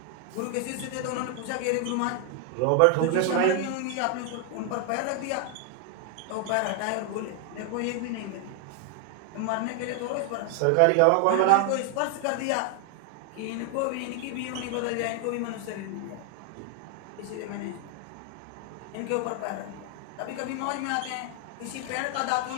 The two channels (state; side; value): different; both; correlation 0.00